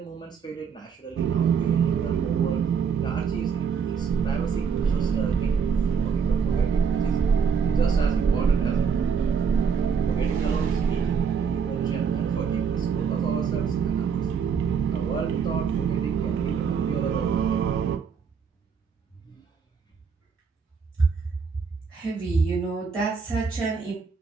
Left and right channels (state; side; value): quieter; left; 6.3 dB